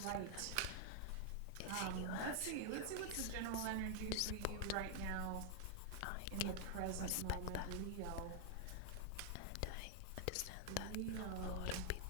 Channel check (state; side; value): different; both; correlation 0.00